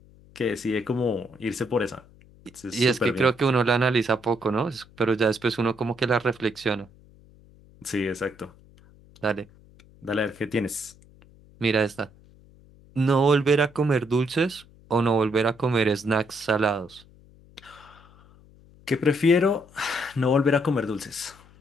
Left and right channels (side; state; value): left; noise; hum, 26 dB below the sound